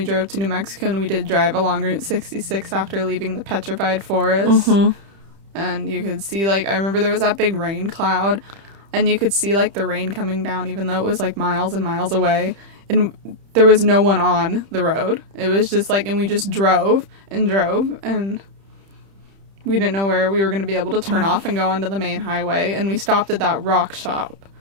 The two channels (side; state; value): left; late; 30 ms